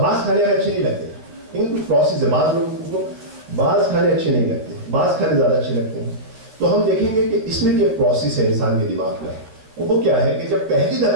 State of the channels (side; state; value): left; late; 13 ms